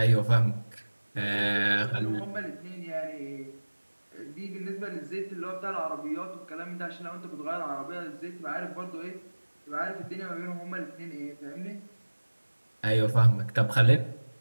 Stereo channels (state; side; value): inverted; both; correlation -1.00